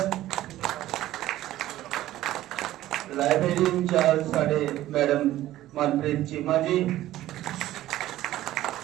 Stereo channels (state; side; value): quieter; left; 14.5 dB